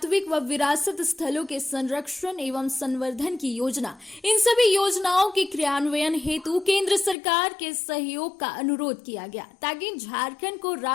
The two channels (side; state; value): right; drops out; at 7.2 s